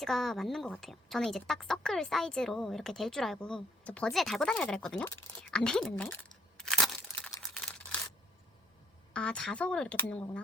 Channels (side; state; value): both; normal; correlation 0.64